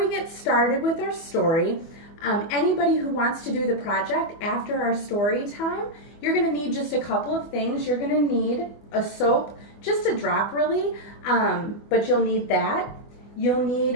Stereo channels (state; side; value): late; right; 24 ms